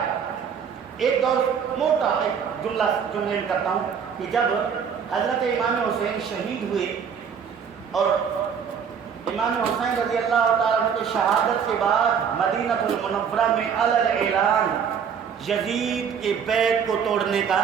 ایک دور موٹا ایک جملے کرتا ہوں کہ جب حضرت امام حسین شہید ہوئے اور امام حسین رضی اللہ تعالیٰ عنہ کی شہادت کے بعد مدینہ المنورہ میں اعلان یزید کے بیعت کو توڑنے کا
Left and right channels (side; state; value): left; quieter; 7.2 dB